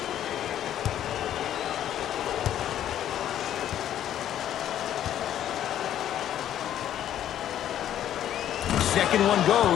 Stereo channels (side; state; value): right; quieter; 11.1 dB